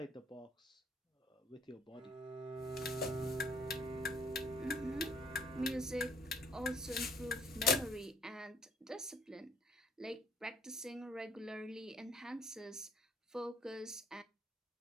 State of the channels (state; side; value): normal; both; correlation 0.60